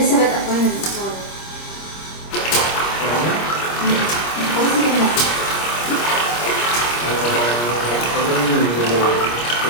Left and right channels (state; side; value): late; right; 25 ms